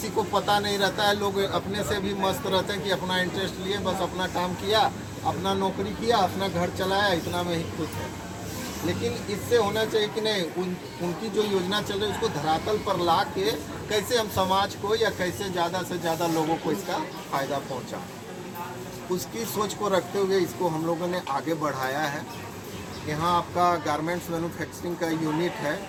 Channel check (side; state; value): both; identical; correlation 1.00